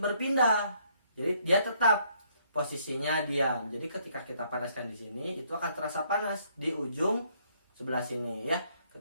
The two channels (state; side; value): inverted; both; correlation -0.68